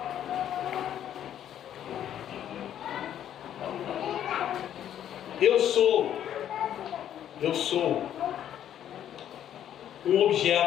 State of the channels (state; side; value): quieter; right; 10.5 dB